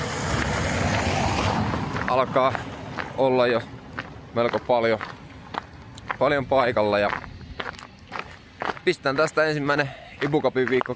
alkaa olla jo melko paljon paikalla ja pistän tästä ensimmäinen IBU Cupin viikko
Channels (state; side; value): identical; both; correlation 1.00